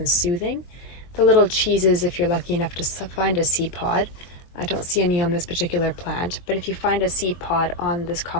soothing. The little cheeses, if you're lucky enough to find a seed pod, I don't see any on this particular plant, but if you find a seed pod on this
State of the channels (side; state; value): right; late; 23 ms